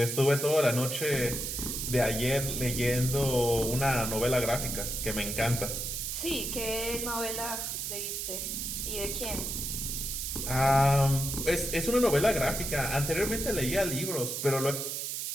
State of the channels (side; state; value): right; noise; hiss, 3 dB below the sound